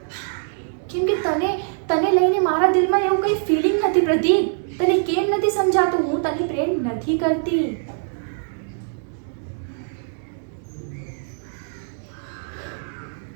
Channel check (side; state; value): left; silent; digital silence